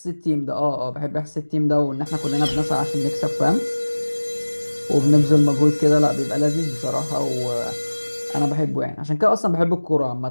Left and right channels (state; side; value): inverted; both; correlation -1.00